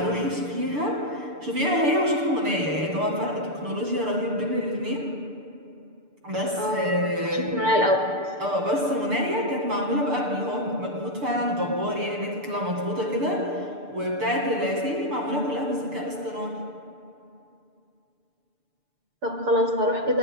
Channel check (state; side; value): late; left; 6.8 ms